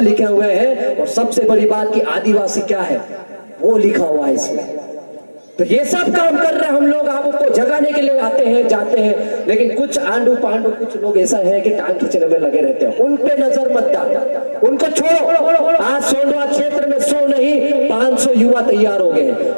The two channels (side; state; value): both; inverted; correlation -1.00